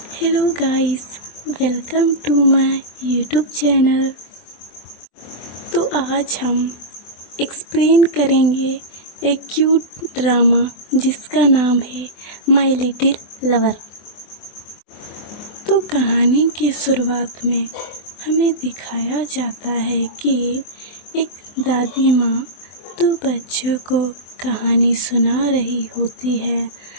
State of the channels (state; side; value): late; right; 24 ms